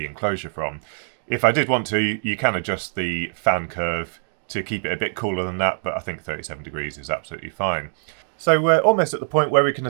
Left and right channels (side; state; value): left; silent; digital silence